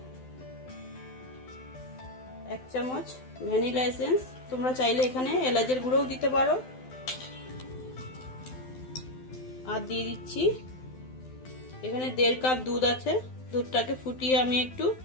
1 চামচ ভ্যানিলা এসেন্স। তোমরা চাইলে এখানে এলাচের গুঁড়োও দিতে পারো। আর দিয়ে দিচ্ছি এখানে 1.5 কাপ দুধ আছে, দুধটাকে ফুটিয়ে আমি একটু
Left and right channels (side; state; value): right; late; 12 ms